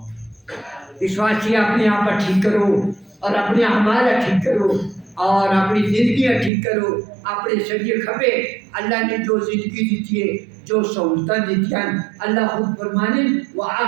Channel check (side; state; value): left; drops out; at 6.5 s